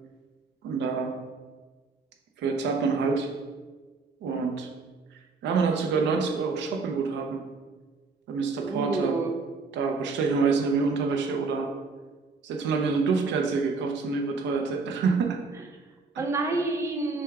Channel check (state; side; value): quieter; left; 4.3 dB